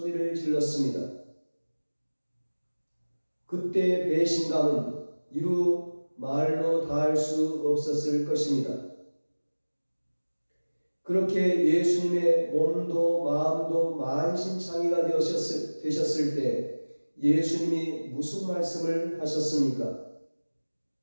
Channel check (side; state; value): both; inverted; correlation -1.00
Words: 질렀습니다. 그때 배신감은 이루 말로 다할 수 없었을 것입니다. 그렇게 예수님의 몸도 마음도 만신창이가 되셨을 때 예수님이 무슨 말씀을 하셨습니까?